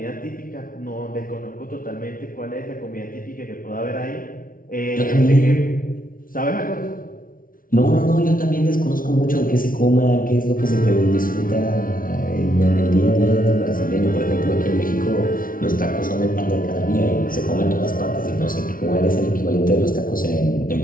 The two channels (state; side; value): late; right; 0.41 ms